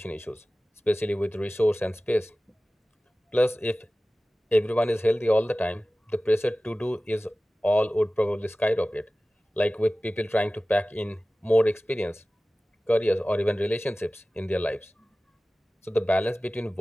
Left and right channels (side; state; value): both; normal; correlation 0.97